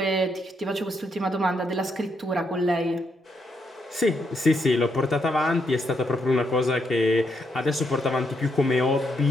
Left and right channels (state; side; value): normal; both; correlation 0.78